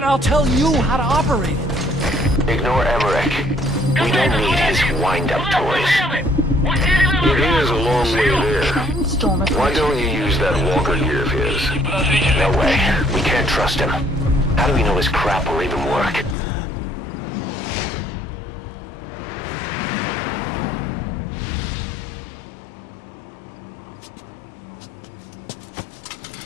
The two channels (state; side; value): drops out; right; at 16.4 s